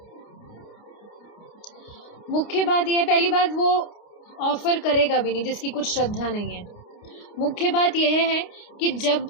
मुख्य बात यह है, पहली बात वो ऑफर करेगा भी नहीं जिसकी कुछ श्रद्धा नहीं है। मुख्य बात यह है कि जब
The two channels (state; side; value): late; right; 29 ms